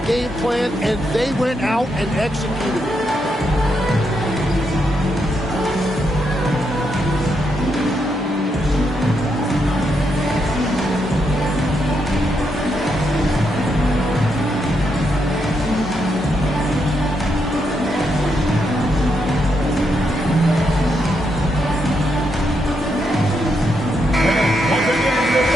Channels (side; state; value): both; normal; correlation 0.80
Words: game plan, and they went out and executed it.